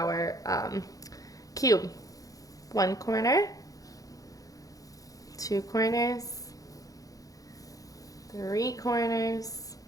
cube. 1 corner, 2 corners, 3 corners,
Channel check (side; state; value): right; late; 0.17 ms